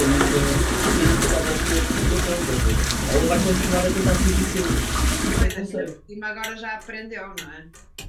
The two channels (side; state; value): both; identical; correlation 1.00